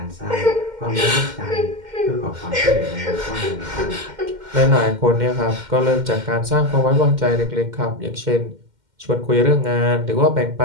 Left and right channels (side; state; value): left; late; 2.1 ms